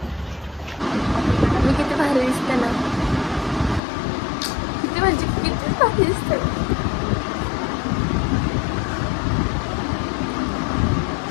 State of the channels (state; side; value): drops out; right; at 3.8 s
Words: मी किती भारी दिसते ना, किती म्हणजे किती भारी दिसते.